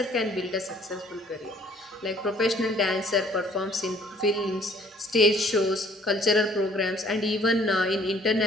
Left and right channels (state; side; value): normal; both; correlation 0.58